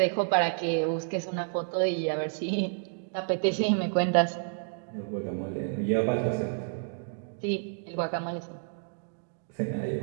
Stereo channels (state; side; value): silent; left; digital silence